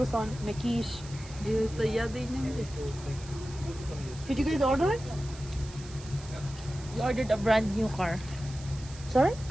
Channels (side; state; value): right; noise; hiss, 17 dB below the sound